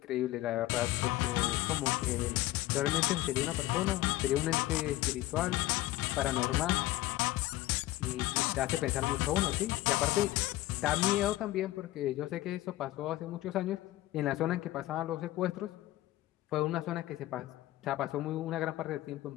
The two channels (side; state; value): right; quieter; 16.3 dB